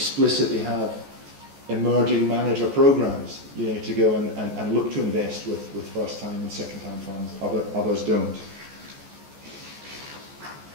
have emerging manager programs, you know, to go and look to invest with first time and second time funds. Others don't.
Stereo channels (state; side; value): late; left; 14 ms